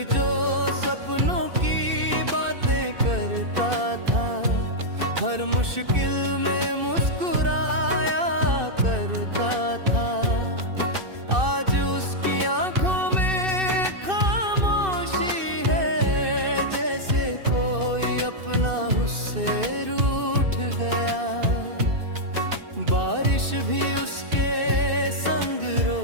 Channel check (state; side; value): late; left; 2.6 ms